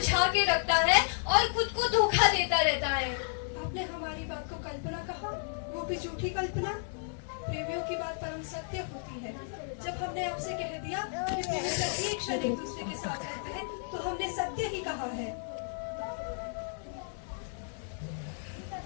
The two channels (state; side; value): silent; right; 56 dB below the other